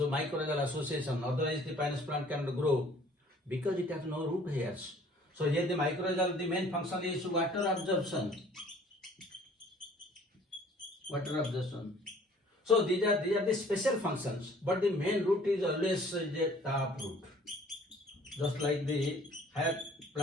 association. Otherwise, the Pinus plant cannot grow because it has no root hairs. So here the mycorrhizal, the main function is water absorption. So these are the special functions, but the main root is always a tap root. Just like the higher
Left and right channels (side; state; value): both; normal; correlation 0.55